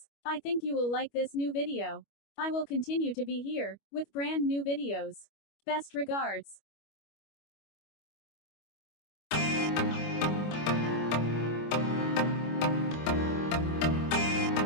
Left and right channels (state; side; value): late; right; 25 ms